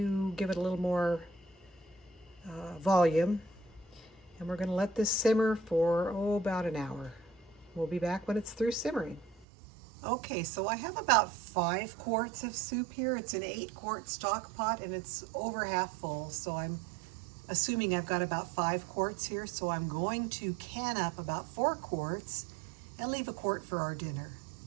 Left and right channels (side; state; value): left; drops out; at 9.5 s